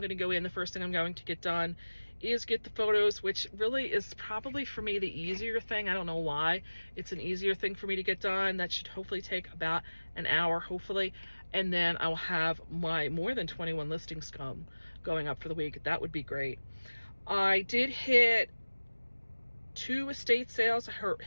to go in. The first thing I'm going to get done is get the photos, which really is probably for me the easier thing. I don't know why. It's an easier thing for me to get done. That should hopefully take about an hour, hopefully. And then I'll have my more than 21 listings going up for the week. That would be great. I did hit 2 estate sales. I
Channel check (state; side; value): inverted; both; correlation -1.00